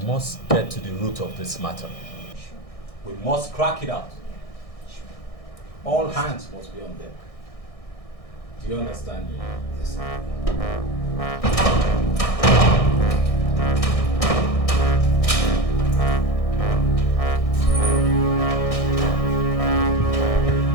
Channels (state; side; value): late; right; 1.6 ms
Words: get to the root of this matter. Sure. We must crack it out. Sure. All hands must be on deck. Do you understand me? Yes.